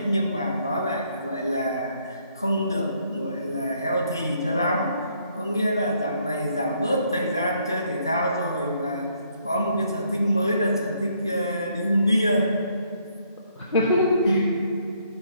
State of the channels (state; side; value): inverted; both; correlation -0.69